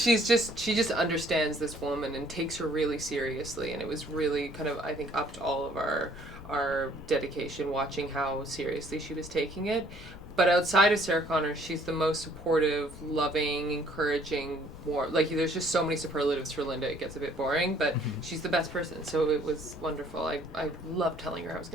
just understands this woman and takes her really seriously, and it was really kind of, I think, upped all of our dedication watching how seriously she was taking it. But outside of Sarah Connor, she's the most supportive, loving, encouraging, more, like, there's just so many superlatives for Linda, it gets a bit boring, but she's the best person, so it was wonderful. I loved telling her I was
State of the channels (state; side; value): noise; left; rumble, 18 dB below the sound